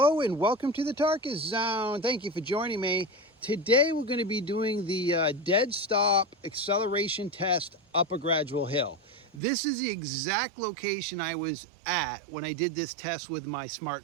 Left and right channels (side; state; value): left; drops out; at 9.4 s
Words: and welcome to the Tarkus Zone. Thank you for joining me. Today we're going to be doing the dead stop acceleration test up a gradual hill. This is the exact location I was at when I did this test with my Smart